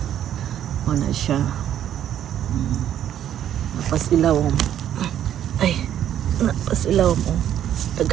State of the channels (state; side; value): quieter; left; 10.6 dB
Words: Wala siya. Napas ilaw. Ay, napas ilaw mo.